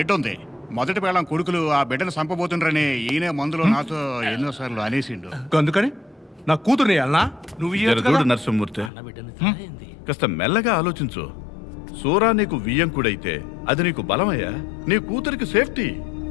ఉంది. మొదటి పేళం కొడుకులు ఆ బిడ్డను చంపబోతుండ్రని ఈయన మందులో నాతో ఎన్నోసార్లు అనేసిండు. అందుకని నా కూతుర్ని అన్నా నువ్వు చూడు నరసింహమూర్తి, కాస్త మెల్లగా ఆలోచించు. సూరా నీకు వియ్యంకుడైతే అది నీకు బలమయ్యా, నీ కూతురికి సేఫ్టీ.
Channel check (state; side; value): drops out; right; at 8.9 s